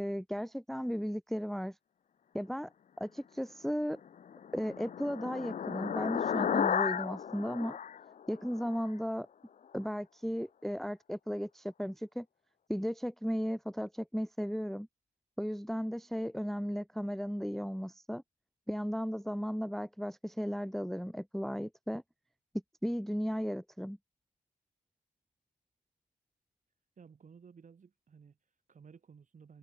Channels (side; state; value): both; normal; correlation 0.76